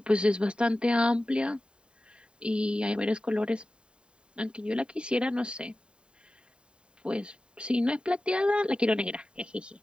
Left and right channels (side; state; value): left; late; 0.051 ms